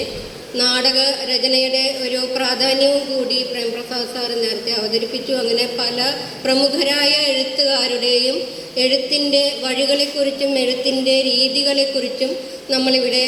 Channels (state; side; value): identical; both; correlation 1.00